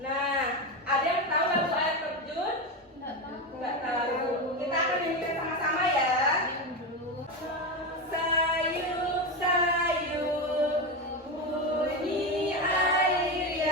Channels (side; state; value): both; normal; correlation 0.15